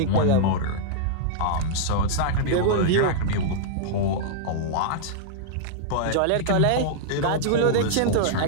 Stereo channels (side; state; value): both; different; correlation -0.02